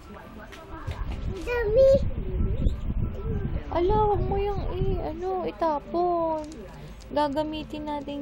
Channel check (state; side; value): identical; both; correlation 1.00